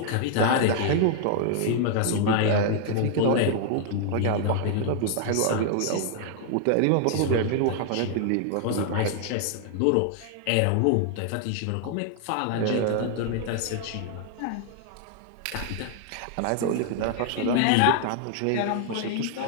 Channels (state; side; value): different; both; correlation 0.00